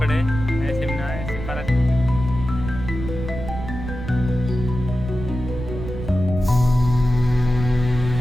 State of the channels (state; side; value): noise; right; rumble, 8 dB below the sound